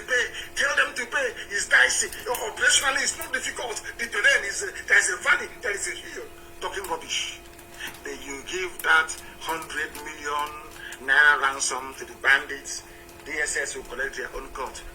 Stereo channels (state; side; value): identical; both; correlation 1.00